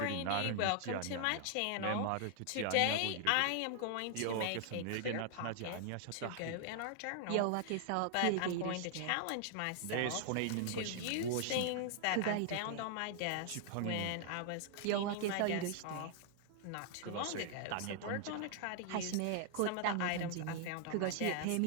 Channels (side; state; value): both; different; correlation 0.00